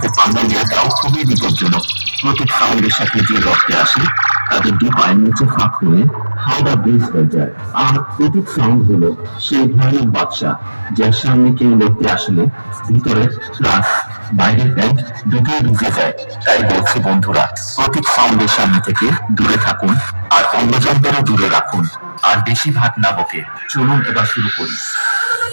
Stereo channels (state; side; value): inverted; both; correlation -1.00